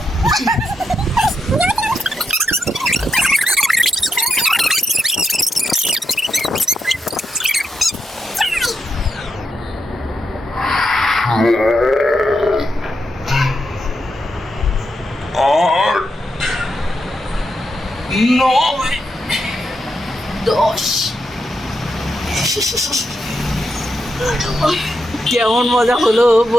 কেমন মজা হলো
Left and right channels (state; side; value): normal; both; correlation 0.84